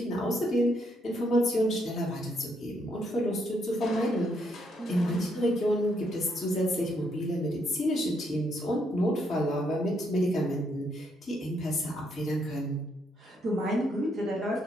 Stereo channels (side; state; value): both; normal; correlation 0.75